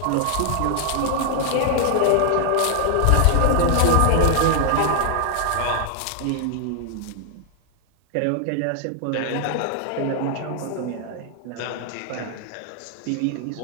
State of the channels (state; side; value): different; both; correlation 0.00